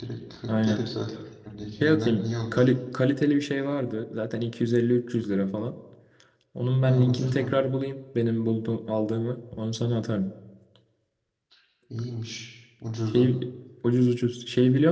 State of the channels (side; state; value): both; identical; correlation 1.00